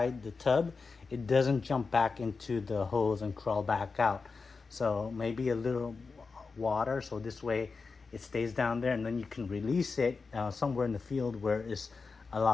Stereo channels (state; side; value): quieter; right; 4.5 dB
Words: the tub, it doesn't jump back into the hose and crawl back out. So maybe a little water, so this way it stays down there, and then you can release it somewhere in the field where it's